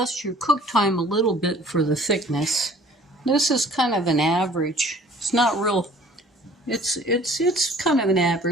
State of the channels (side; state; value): both; normal; correlation 0.52